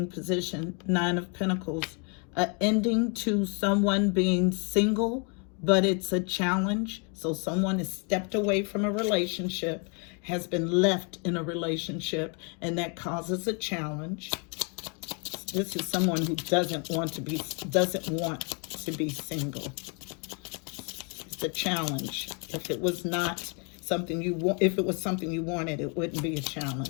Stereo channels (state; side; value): quieter; right; 36.1 dB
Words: position. 9 of Pentacles. An ending to someone being single, but it's a challenge. So someone has stepped away from a relationship, has been left in a relationship, and that causes a challenge. This is someone who doesn't want to be single. It's a challenge. If it was not something you want. If it was something you wanted, it wouldn't be a